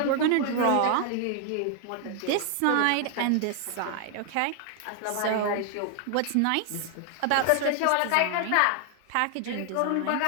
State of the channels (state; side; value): different; both; correlation 0.00